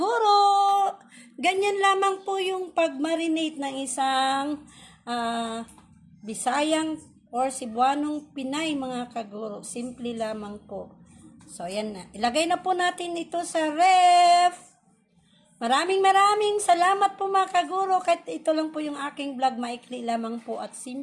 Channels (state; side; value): identical; both; correlation 1.00